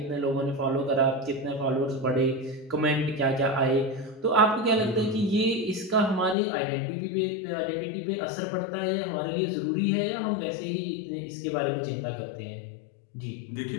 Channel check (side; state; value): right; drops out; at 6.4 s